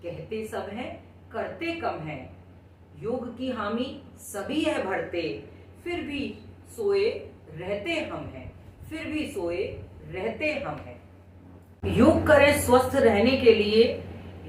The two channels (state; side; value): identical; both; correlation 1.00